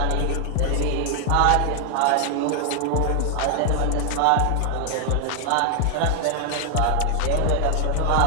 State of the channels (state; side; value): different; both; correlation 0.00